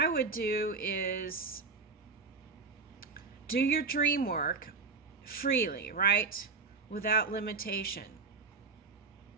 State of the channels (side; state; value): left; quieter; 4.5 dB